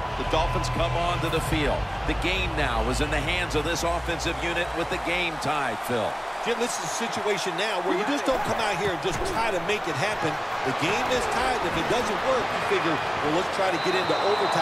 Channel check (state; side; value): identical; both; correlation 1.00